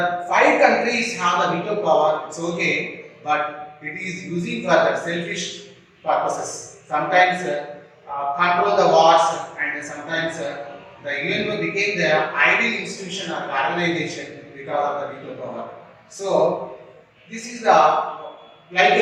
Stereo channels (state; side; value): identical; both; correlation 1.00